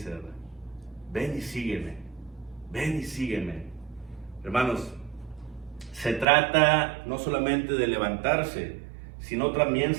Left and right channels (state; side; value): drops out; left; at 6.2 s